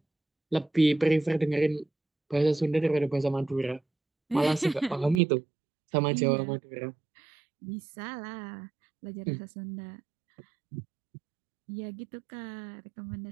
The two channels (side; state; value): left; drops out; at 5.2 s